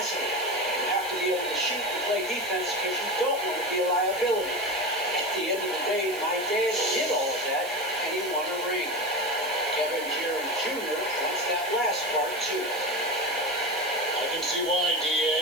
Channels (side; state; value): right; noise; hiss, 14 dB below the sound